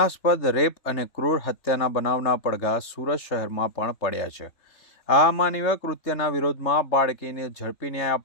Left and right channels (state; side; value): late; right; 3.4 ms